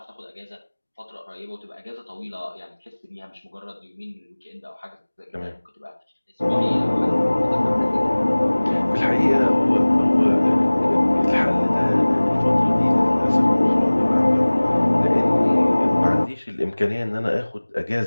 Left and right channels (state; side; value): inverted; both; correlation -1.00